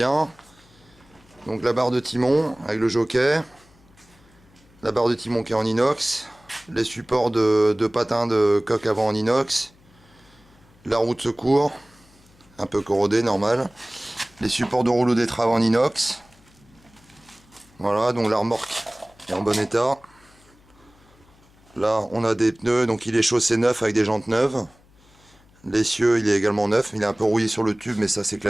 Donc, la barre de timon avec le jockey. La barre de timon qui est en inox. Les supports de patins de coque avant en inox. La roue de secours, un peu corrodée, normal. Les supports de rouleau d'étrave en inox. Voilà, donc la remorque est en bon état. Là, on a des pneus, donc il est chaussé neuf avec des jantes neuves. L'essieu, il est également neuf. Il est un peu rouillé sur le tube, mais ça, c'est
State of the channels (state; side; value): noise; left; hum, 29 dB below the sound